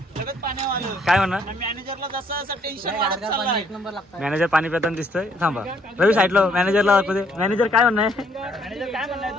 काय म्हणा? मॅनेजरला जसं टेन्शन वाढत चाललंय. मॅनेजर पाणी पिताना दिसतोय. थांबा रवी साईडला मॅनेजरला दाखवते. मॅनेजर काय म्हणणं मॅनेजर काय म्हणलाय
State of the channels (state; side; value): normal; both; correlation 0.67